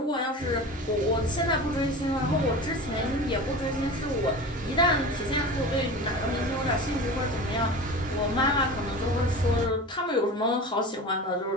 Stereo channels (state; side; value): normal; both; correlation 0.33